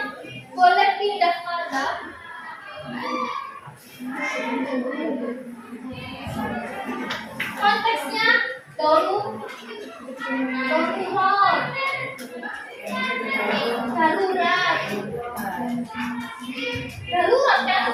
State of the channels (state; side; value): identical; both; correlation 1.00